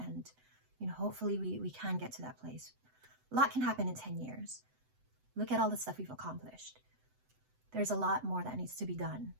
hopefully we can get to that place. A lot can happen in 10 years. Look at all the stuff we've accomplished. There's a lot more that needs to be done.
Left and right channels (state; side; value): late; left; 7.9 ms